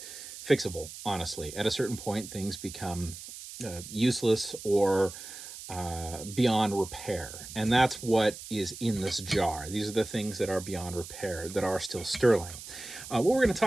fixable, honestly. At a certain point, things become useless or beyond repair, and that's what is in this jar. These are the things that are beyond repair that are still sterling. What we're going to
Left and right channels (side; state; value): right; noise; hiss, 12 dB below the sound